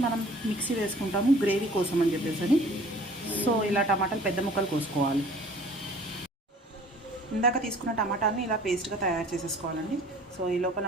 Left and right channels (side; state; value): both; normal; correlation 0.50